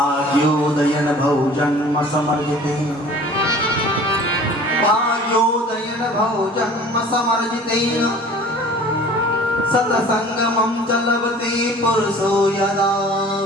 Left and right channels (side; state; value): both; normal; correlation 0.46